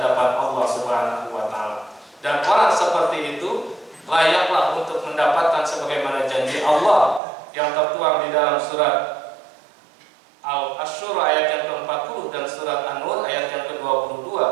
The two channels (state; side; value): drops out; left; at 7.2 s